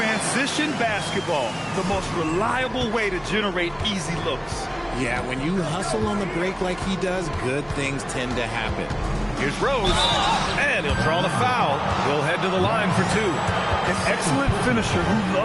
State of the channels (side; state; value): both; identical; correlation 1.00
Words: basketball, the most reliable way to generate easy looks. Yeah, when you hustle on the break like he does, good things tend to happen. Here's Rose, and he'll draw the foul. We'll head to the line for 2. An excellent finisher who